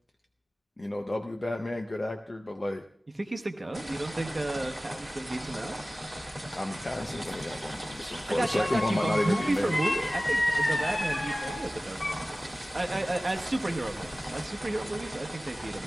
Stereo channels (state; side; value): normal; both; correlation 0.97